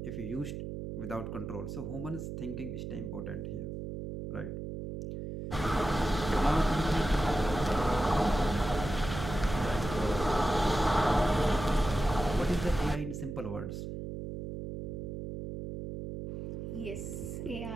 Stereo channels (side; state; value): right; noise; hum, 6 dB below the sound